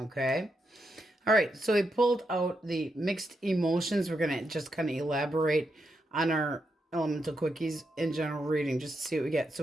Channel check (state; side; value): normal; both; correlation 0.83